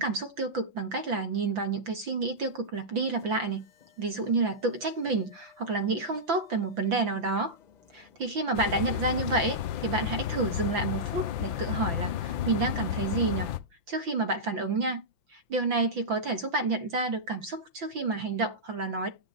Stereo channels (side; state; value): left; late; 5.9 ms